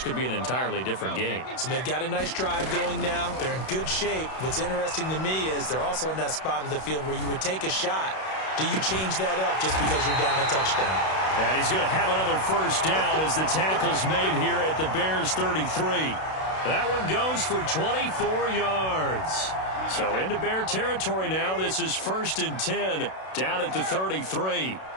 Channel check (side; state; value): right; late; 32 ms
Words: be an entirely different game. So they've got a nice drive going now. They're in good shape. What's interesting to me is they're also in that spot of the field where you would take a shot. Do you change that up just because you're down a touchdown? And he's going to have another 1st down as the tackle's made here at the Bears 33. That one goes for 24 yards. So into Bear territory now. This is 1st and 10 down at the 33.